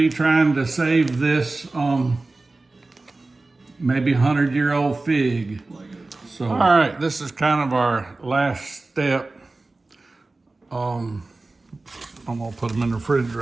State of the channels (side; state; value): left; quieter; 3.3 dB